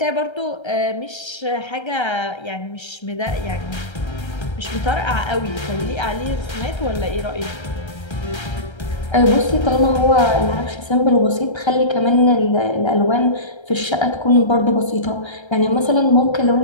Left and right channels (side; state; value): right; late; 1.3 ms